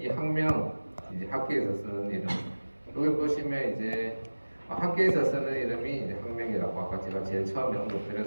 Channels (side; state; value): both; inverted; correlation -1.00